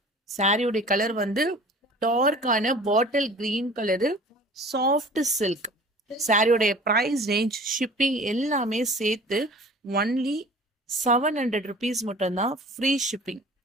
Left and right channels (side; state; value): both; normal; correlation 0.44